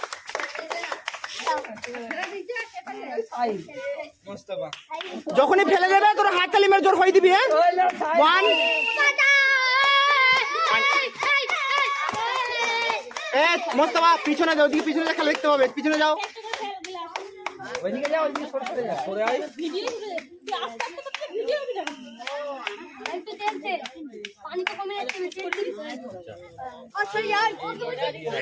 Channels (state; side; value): identical; both; correlation 1.00